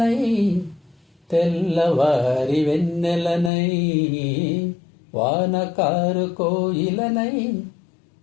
తెల్లవారి వెన్నెలనై, వానకారు కోయిలనై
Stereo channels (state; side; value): drops out; right; at 3.5 s